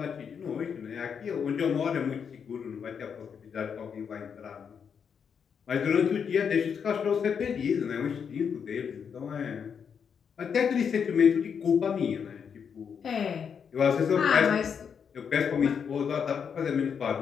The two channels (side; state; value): right; quieter; 7.0 dB